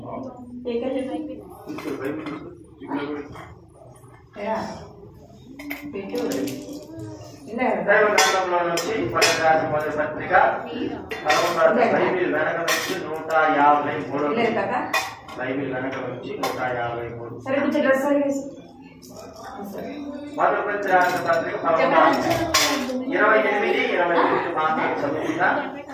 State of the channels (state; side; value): identical; both; correlation 1.00